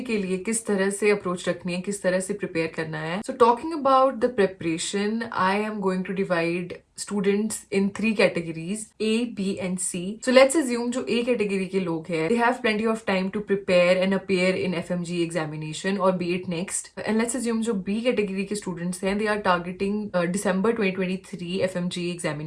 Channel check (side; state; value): both; identical; correlation 1.00